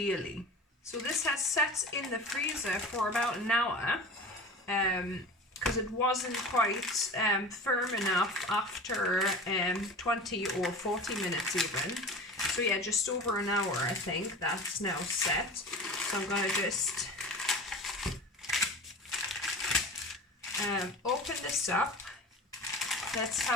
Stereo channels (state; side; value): normal; both; correlation 0.35